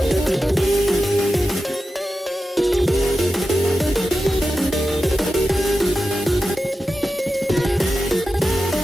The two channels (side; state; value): both; normal; correlation 0.91